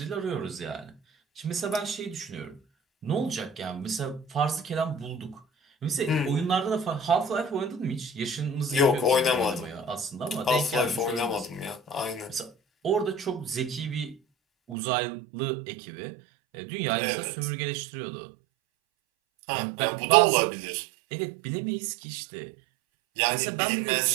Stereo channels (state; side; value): drops out; left; at 14.8 s